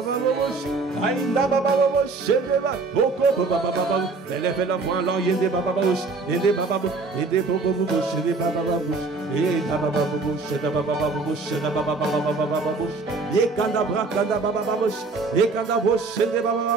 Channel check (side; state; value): left; quieter; 4.0 dB